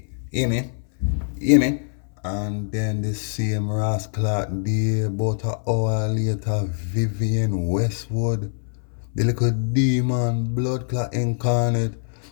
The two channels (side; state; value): right; silent; 60 dB below the other